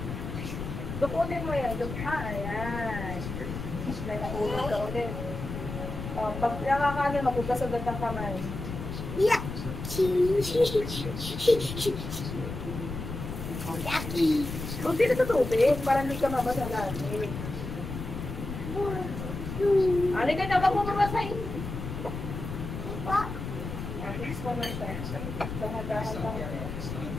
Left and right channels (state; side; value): noise; left; rumble, 7 dB below the sound